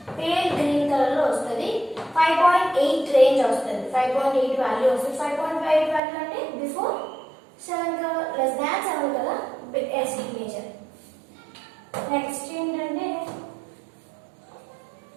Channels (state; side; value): drops out; left; at 6.0 s